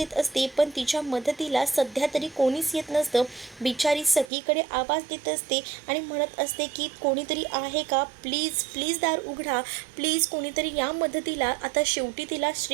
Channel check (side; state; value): left; drops out; at 4.3 s